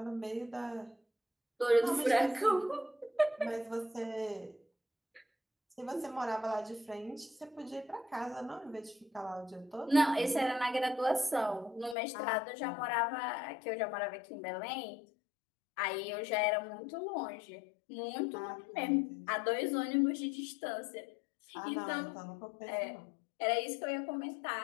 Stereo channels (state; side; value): drops out; right; at 12.0 s